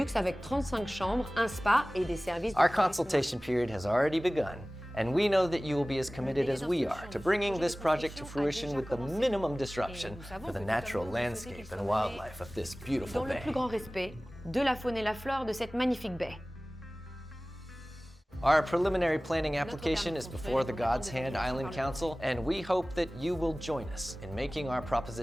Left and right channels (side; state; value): both; normal; correlation 0.98